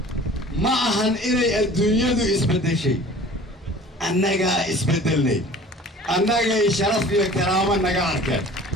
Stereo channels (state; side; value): normal; both; correlation 0.45